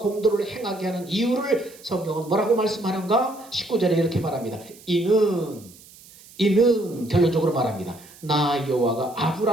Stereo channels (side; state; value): right; noise; hiss, 22 dB below the sound